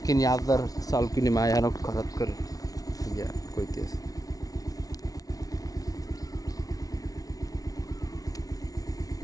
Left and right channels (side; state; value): right; late; 0.18 ms